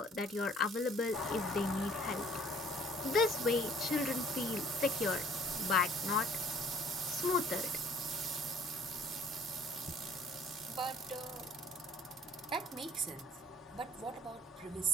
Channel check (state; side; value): normal; both; correlation 0.56